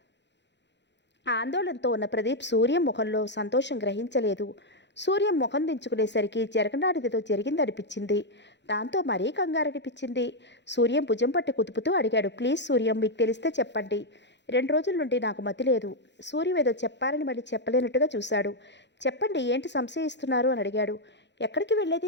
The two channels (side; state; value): right; late; 0.52 ms